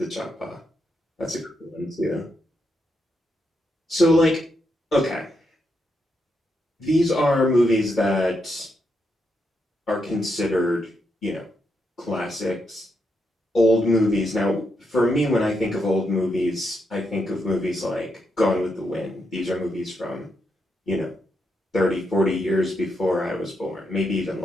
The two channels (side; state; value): both; normal; correlation 0.82